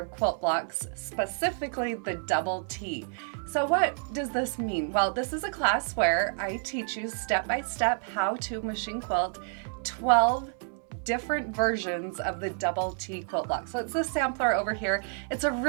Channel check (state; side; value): silent; left; 56 dB below the other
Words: of Quilt Blocks, specifically the double T. So what does this mean? Well, this is a class where I teach you step by step how to machine quilt 12 different versions of the double T quilt block. So it's the sampler over here. It's a